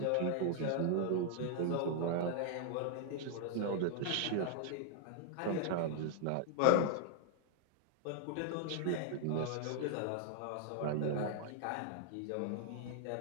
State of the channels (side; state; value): both; different; correlation 0.00